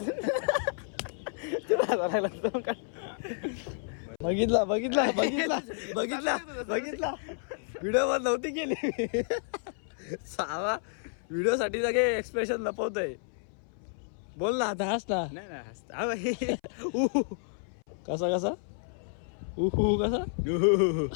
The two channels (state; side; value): silent; right; 57 dB below the other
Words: बघितला व्हिडिओ वर नव्हती केली. सावा व्हिडिओ साठी सगळे एक्सप्रेशन लपवतोय. बोल ना आता, हस ना. नाही हसता कसा कसा